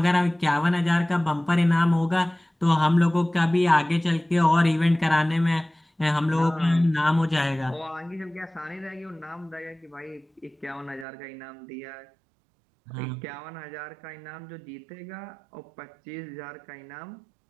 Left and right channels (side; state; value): left; drops out; at 11.1 s